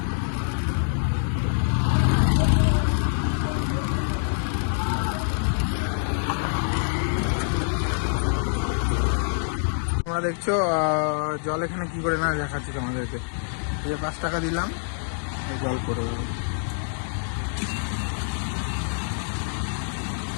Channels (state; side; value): silent; right; digital silence